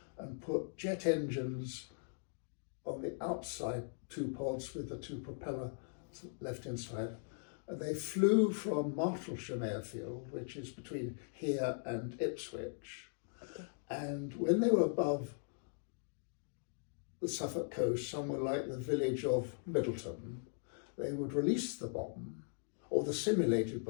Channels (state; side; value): silent; right; digital silence